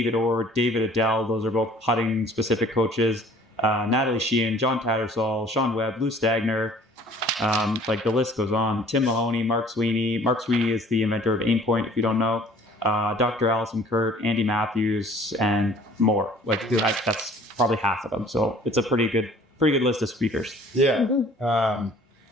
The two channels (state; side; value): normal; both; correlation 0.52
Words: Orr, David Adele. Those are both putting specific coaches. Natalie Sheehan, John Tattersall, Sean Webb, Lou Stagner. Like the list goes on. Tim Mahoney, Mark Sweeney. Mark Sweeney is the inventor of Aim Point, if you don't know. Dr. Allison Kurt, Andy Matthews, and more. Like that's probably half of them. So it's a pretty good list of speakers. Yeah.